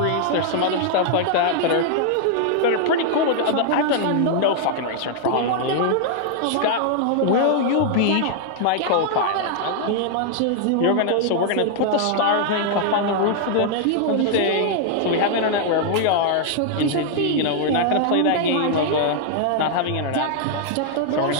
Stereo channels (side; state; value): both; different; correlation 0.00